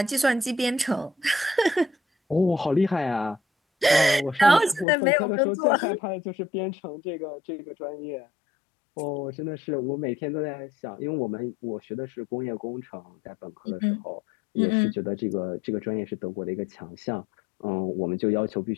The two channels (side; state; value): right; drops out; at 4.9 s